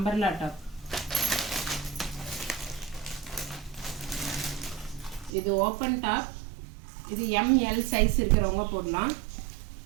டாப். இது ஓப்பன் டாப். இது எம்எல் சைஸ் இருக்கிறவங்க போடலாம்.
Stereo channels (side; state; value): left; drops out; at 5.3 s